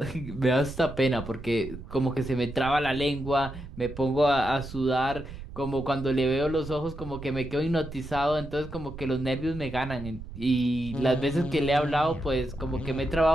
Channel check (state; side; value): noise; right; rumble, 12 dB below the sound